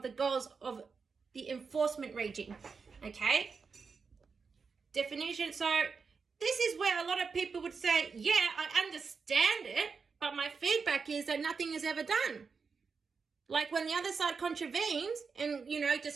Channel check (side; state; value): left; quieter; 5.2 dB